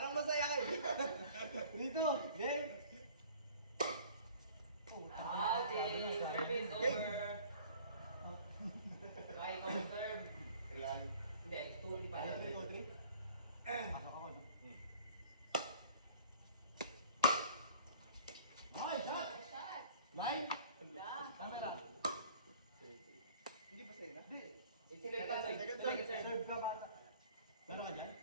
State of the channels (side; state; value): both; inverted; correlation -0.49